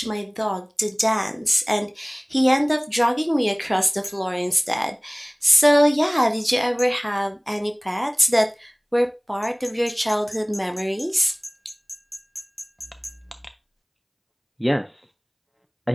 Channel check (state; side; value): identical; both; correlation 1.00